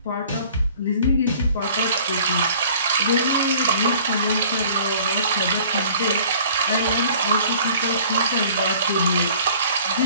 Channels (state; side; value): inverted; both; correlation -0.51